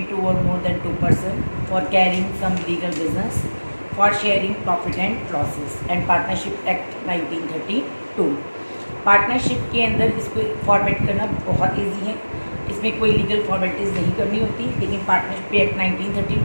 two और more than two person for carrying some legal business for sharing profit and losses and partnership act 1932। Partnership के अंदर इसको फॉर्मेट करना बहुत ईजी है, इसमें कोई लीगल फॉर्मेलिटीज़ नहीं करनी होती, लेकिन पार्टनरशिप एक्ट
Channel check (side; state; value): both; inverted; correlation -1.00